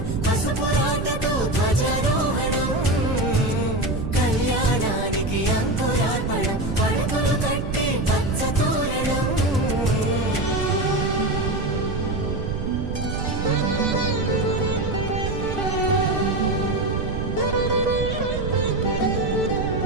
పసుపురాటతో ధ్వజారోహణం కళ్యాణానికి అంకురార్పణం పడుకులు కట్టి పచ్చ తోరణం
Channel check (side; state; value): right; noise; rumble, 3 dB below the sound